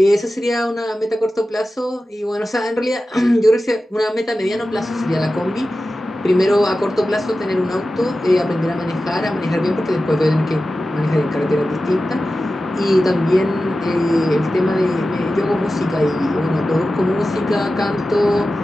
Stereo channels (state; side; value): normal; both; correlation 0.94